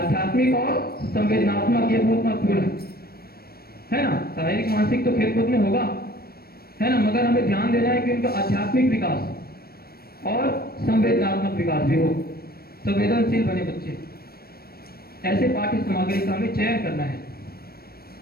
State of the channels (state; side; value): late; right; 0.44 ms